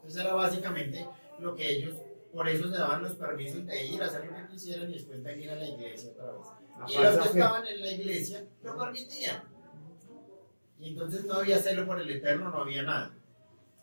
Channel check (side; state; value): both; inverted; correlation -1.00